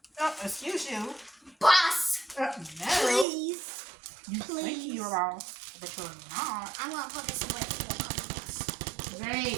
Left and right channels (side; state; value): left; drops out; at 3.2 s